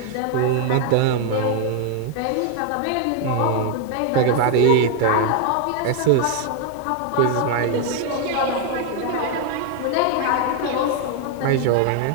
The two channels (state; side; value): different; both; correlation 0.00